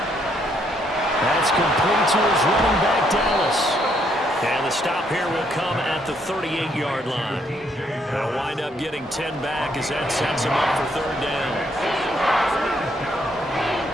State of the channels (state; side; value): normal; both; correlation 0.71